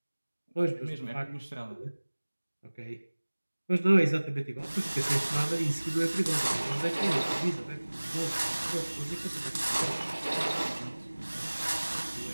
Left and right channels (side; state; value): both; inverted; correlation -1.00